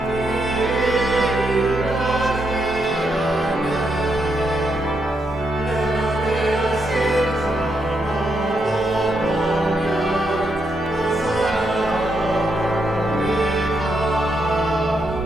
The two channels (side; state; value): both; normal; correlation 0.80